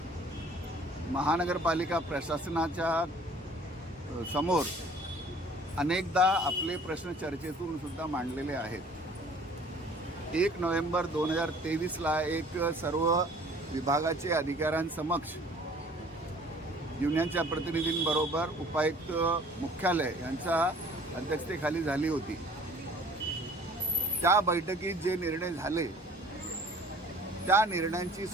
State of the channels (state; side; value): normal; both; correlation 0.51